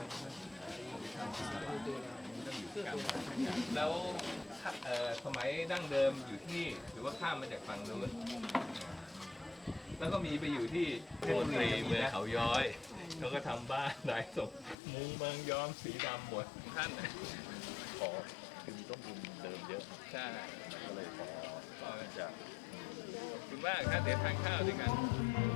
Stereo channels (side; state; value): right; drops out; at 14.8 s